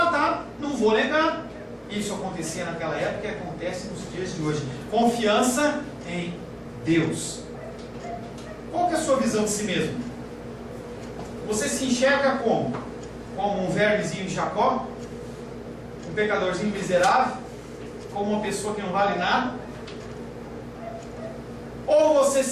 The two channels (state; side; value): identical; both; correlation 1.00